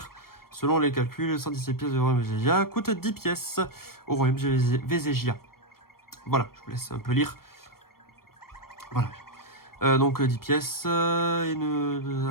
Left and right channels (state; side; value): late; right; 0.94 ms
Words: Selon les calculs, 117 pièces de royaume Végésia coûtent 10 pièces au royaume Végésia. Voilà, je vous laisse un peu lire. Voilà. Donc 10 pièces, il